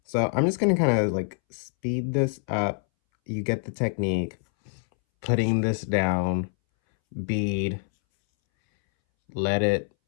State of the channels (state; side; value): silent; right; 61 dB below the other